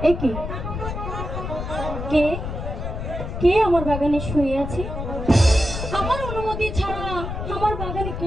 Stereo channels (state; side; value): noise; left; rumble, 5 dB below the sound